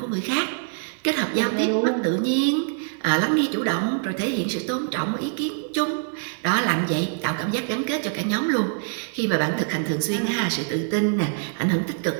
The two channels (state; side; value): silent; left; digital silence